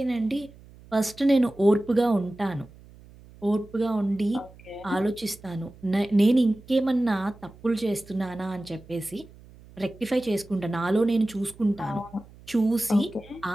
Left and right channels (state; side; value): noise; right; hum, 22 dB below the sound